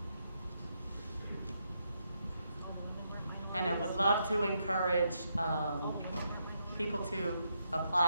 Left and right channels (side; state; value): both; inverted; correlation -0.80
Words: And I would love to encourage people to